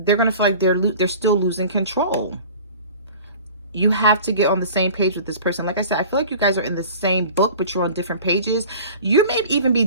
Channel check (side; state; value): both; inverted; correlation -0.42